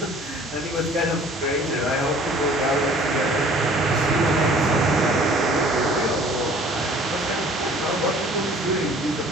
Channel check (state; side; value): normal; both; correlation 0.51